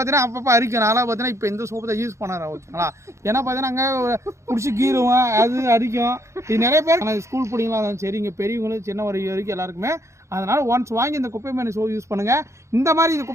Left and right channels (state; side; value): late; left; 0.14 ms